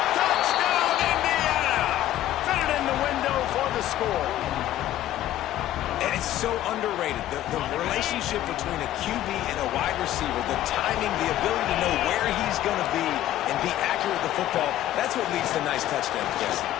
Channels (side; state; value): right; quieter; 13.4 dB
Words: Touchdown, Indiana! Fit it in the window for the score. And it's so underrated. The relationship between a QB and a wide receiver, the timing, the ability to know where he's going to be and be accurate with the football, that's what leads to nice touchdowns, Jesse.